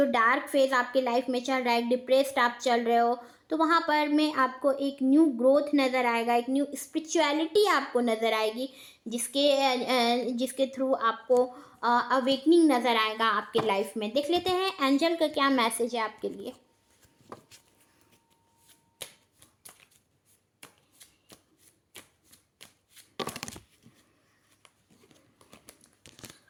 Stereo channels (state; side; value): identical; both; correlation 1.00